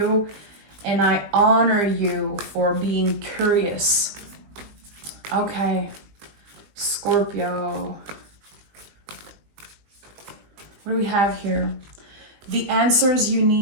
And I honor you for being curious. Okay, Scorpio. What do we have here? The answers you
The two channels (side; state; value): left; late; 20 ms